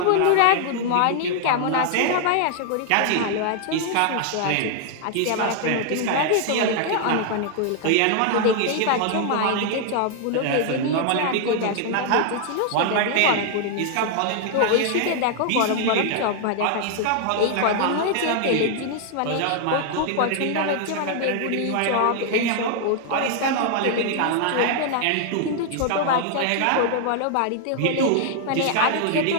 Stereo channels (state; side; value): different; both; correlation 0.00